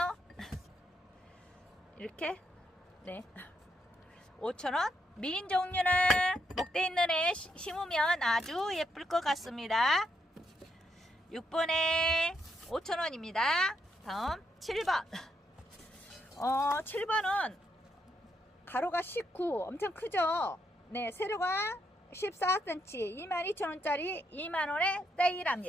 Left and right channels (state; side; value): normal; both; correlation 0.78